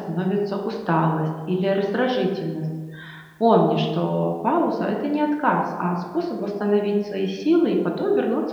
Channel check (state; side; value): identical; both; correlation 1.00